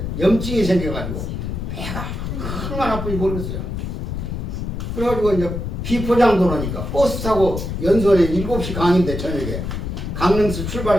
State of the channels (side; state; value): left; noise; rumble, 4 dB below the sound